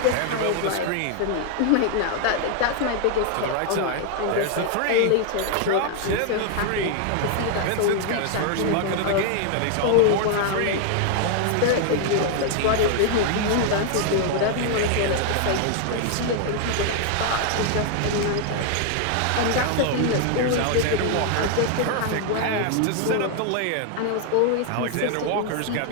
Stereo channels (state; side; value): different; both; correlation 0.00